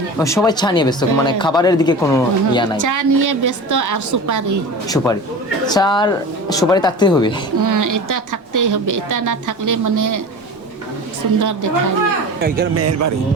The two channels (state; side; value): normal; both; correlation 0.33